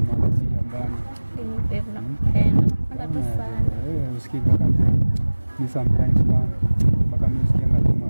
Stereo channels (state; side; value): inverted; both; correlation -1.00